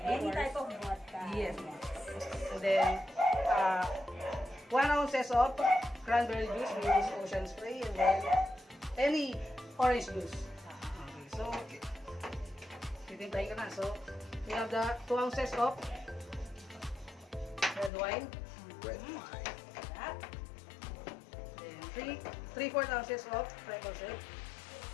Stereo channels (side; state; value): right; drops out; at 17.9 s